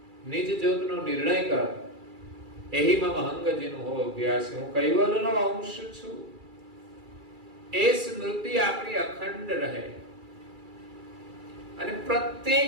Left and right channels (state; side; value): late; left; 2.3 ms